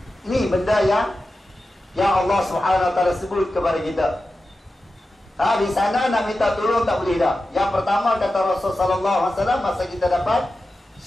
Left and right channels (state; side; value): normal; both; correlation 0.93